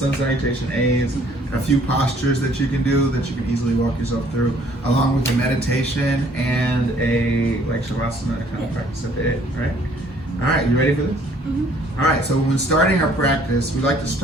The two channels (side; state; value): both; normal; correlation 0.59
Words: salutation A's, a few postures that you can do that you can easily walk yourself through, along with a meditation and a like shavasana kind of practice at the end, right? All right, you ready for this? Mm-hmm. All right, so when starting our practice, we like to